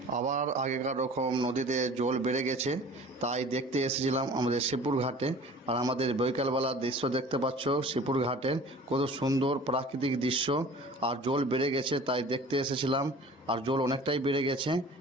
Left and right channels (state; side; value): normal; both; correlation 0.44